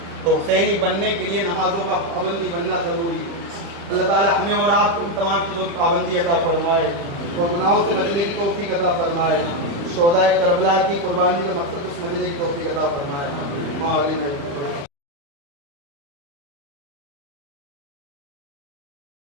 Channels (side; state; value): left; late; 35 ms